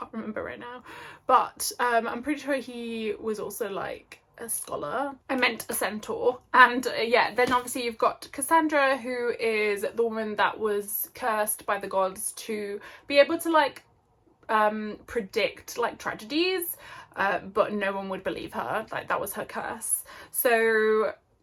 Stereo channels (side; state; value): both; identical; correlation 1.00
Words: remember right now. But I'm pretty sure he was also like a scholar. I meant a centaur. And yeah, then obviously you've got Cassandra, who is the woman that was cursed by the gods to be able to like predict like tragedies, but no one would believe her. Like, that was her curse. So